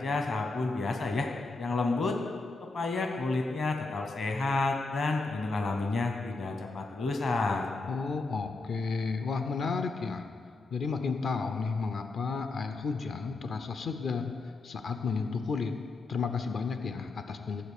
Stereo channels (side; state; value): right; quieter; 3.5 dB